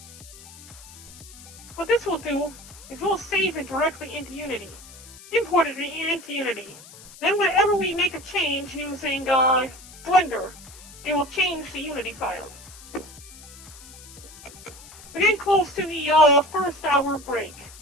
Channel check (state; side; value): noise; left; hiss, 18 dB below the sound